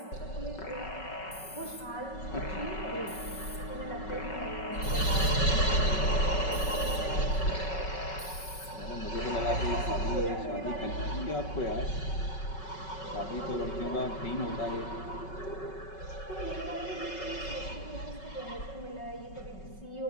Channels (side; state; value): right; late; 5.3 ms